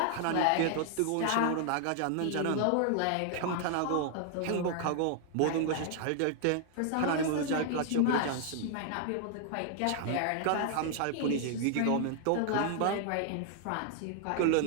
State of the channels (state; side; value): different; both; correlation 0.00